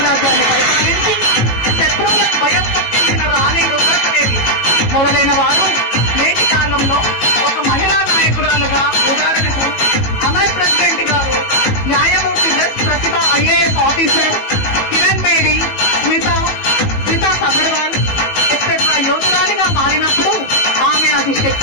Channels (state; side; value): late; right; 18 ms